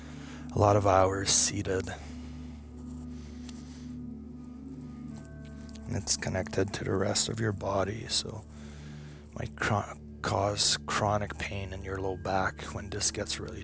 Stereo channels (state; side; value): identical; both; correlation 1.00